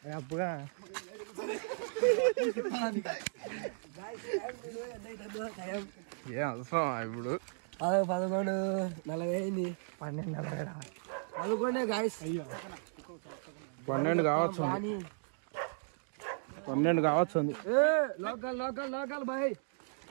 అప్పుగా ఏ అవసరం ఇప్పుడు 11:40 అయింది. 12:40 గాయస్. అయ్యో 12 కావచ్చు, 12 కావచ్చు. లోకల్ లోకల్ లోకల్ బాయ్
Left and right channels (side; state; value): left; silent; digital silence